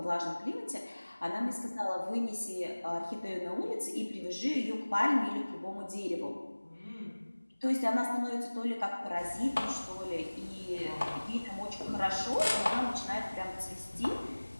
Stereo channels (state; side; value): inverted; both; correlation -1.00